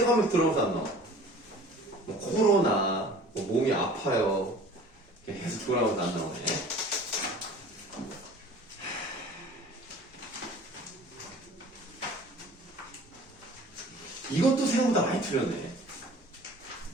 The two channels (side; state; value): both; normal; correlation 0.46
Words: 하면서 들어오면서 안 나와. 뭐 코로나, 뭐 몸이 아파요. 계속 돌아오면서 안 나오네. 이것도 생각보다 많이 틀렸네.